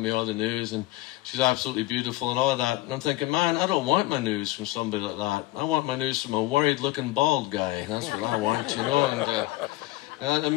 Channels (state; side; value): quieter; right; 18.6 dB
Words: me all the news, and she's absolutely beautiful and all of that. And I'm thinking, man, I don't want my news from somebody like that. I want my news from a worried-looking bald guy. That's what I want, you know, and it